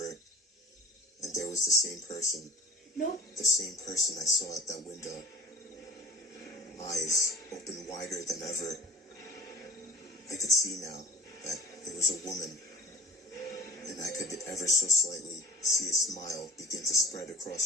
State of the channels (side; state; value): both; normal; correlation 0.44